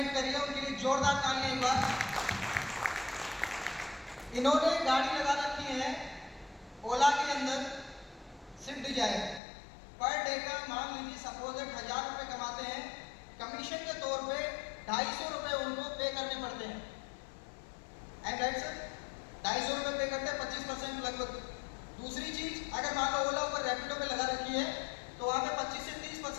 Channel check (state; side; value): drops out; right; at 9.4 s